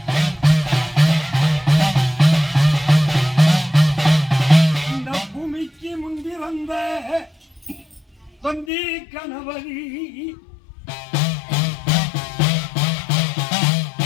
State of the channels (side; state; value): right; drops out; at 8.7 s